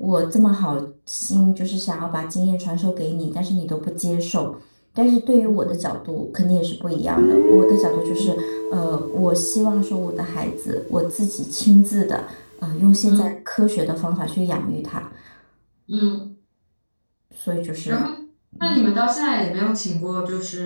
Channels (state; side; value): inverted; both; correlation -1.00